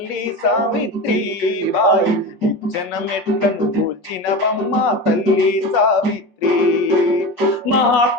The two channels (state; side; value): late; right; 5.5 ms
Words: సావిత్రిబాయి నిచ్చెన మెట్లను కూల్చినవమ్మ తల్లి సావిత్రి.